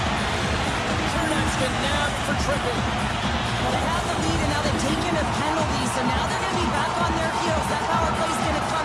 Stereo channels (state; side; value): identical; both; correlation 1.00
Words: Chernak's been nabbed for tripping. Well, they have the lead, and now they've taken a penalty, so now they're going to be back on their heels. That power play's going to